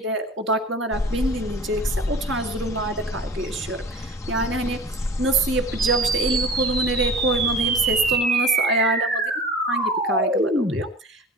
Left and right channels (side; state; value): both; normal; correlation 0.40